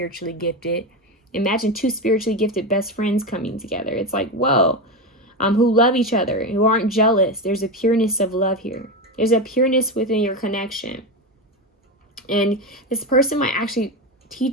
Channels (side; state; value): both; normal; correlation 0.16